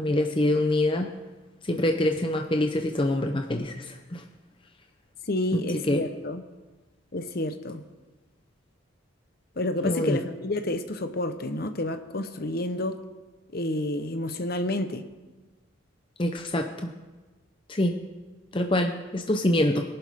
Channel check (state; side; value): normal; both; correlation 0.59